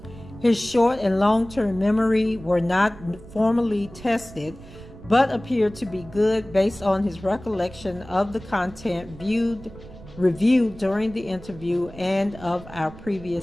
His short and long-term memory were not formally tested, but appeared to be good based on his recollection of the content reviewed during the interview and of our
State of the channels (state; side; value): noise; right; rumble, 17 dB below the sound